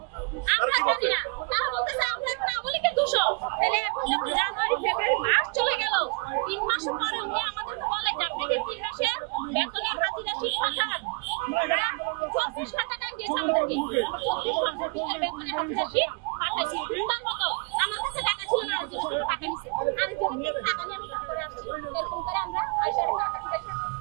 আমরা জানি না। তারা বলতেছে আমরা এখন আমলিকে দোষ। তাহলে এখন যখন জানুয়ারি ফেব্রুয়ারি মাস চলে গেল, 3 মাস পরে উনি আমাদেরকে বলে যে আপনাদের 3 মাসের বেতনের হাজিরা শীত পাঠান। আমরা 24 টাকা দিয়েছি আমাদেরকে, 24 ঘন্টার ভিতরে বেতনের হাজিরা শীত পাঠাইছি। তার মতো আমার কাছে টাকা ছিল না, আরেকজনের টাকা নিছে, আরেকজনের টাকা নিয়ে আমি করে আসছি। এরকম করে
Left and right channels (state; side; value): quieter; left; 33.5 dB